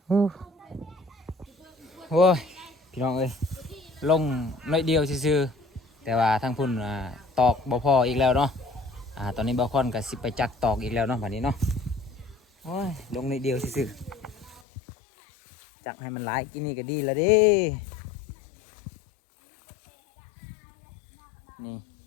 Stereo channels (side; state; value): right; drops out; at 14.6 s